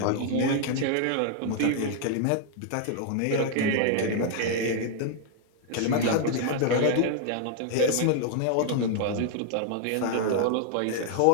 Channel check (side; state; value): both; different; correlation 0.00